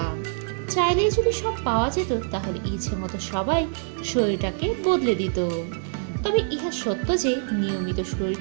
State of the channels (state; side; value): silent; left; 62 dB below the other